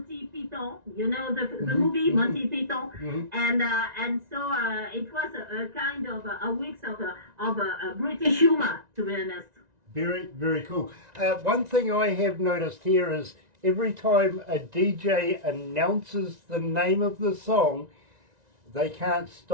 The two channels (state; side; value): late; left; 1.9 ms